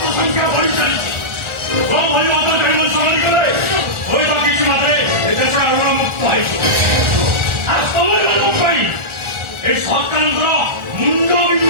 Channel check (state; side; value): late; left; 1.4 ms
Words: ସଂଖ୍ୟା ବଢି ଚାଲିଛି। ଭଳି ଅବକାରୀ ମଣିଷ କଲେ ହୁଏତ କିଛି ମାତ୍ରେ ଏ ଦେଶ ଆଗର ମୁକ୍ତ ହେଇଯିବ। ଆଉ ତମମାନଙ୍କ ପାଇଁ ଏ ସରକାରଙ୍କର ମୁଣ୍ଡ